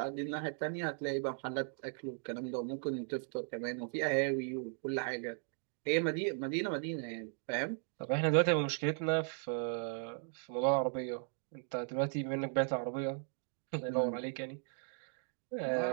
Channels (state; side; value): silent; left; 53 dB below the other